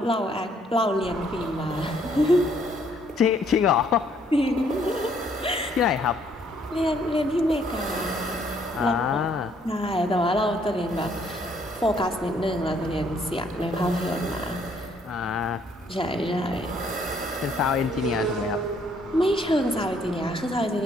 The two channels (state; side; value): normal; both; correlation 0.66